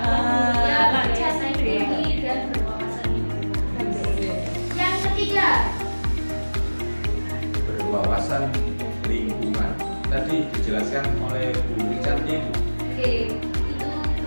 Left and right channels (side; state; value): both; inverted; correlation -1.00